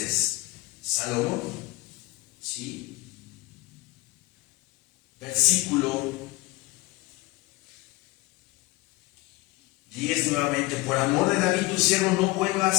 Salomón. ¿Sí? Versículo 10 nuevamente: por amor de David tu siervo, no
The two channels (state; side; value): quieter; right; 19.9 dB